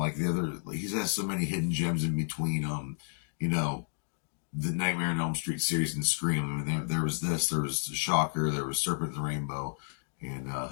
the other, he has so many hidden gems in between, you know, the Nightmare on Elm Street series and Scream. I mean, there was this, there was Shocker, there was Serpent and the Rainbow. And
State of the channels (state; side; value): silent; right; 57 dB below the other